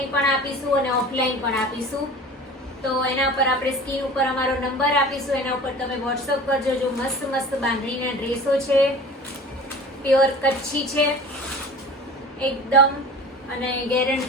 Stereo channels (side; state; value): both; normal; correlation 0.39